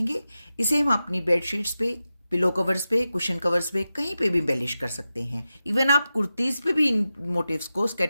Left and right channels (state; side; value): inverted; both; correlation -0.92